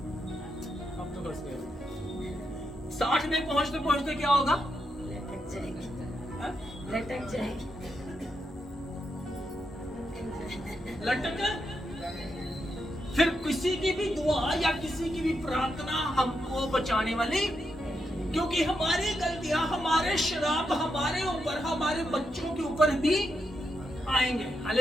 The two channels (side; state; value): both; normal; correlation 0.83